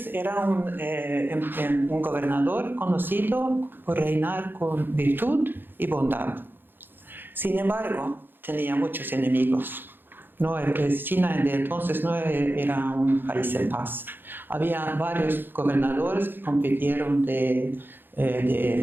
un gobernador conocido por reinar con virtud y bondad. Sin embargo, tenía muchos enemigos. No, China de entonces no era un país en paz. Había varios gobernadores que compitieron del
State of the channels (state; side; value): late; left; 0.098 ms